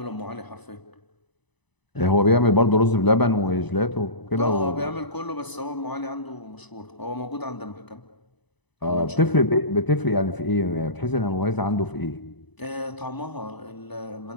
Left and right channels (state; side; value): late; right; 1.0 ms